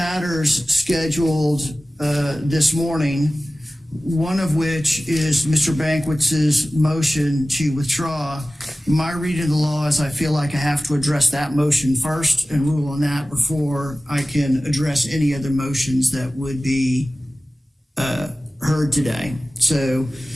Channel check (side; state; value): both; normal; correlation 0.96